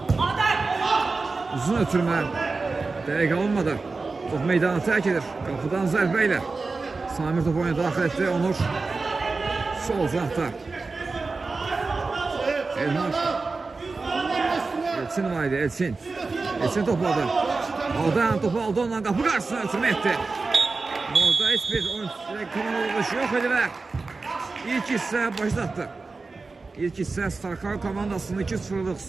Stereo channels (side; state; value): left; quieter; 3.9 dB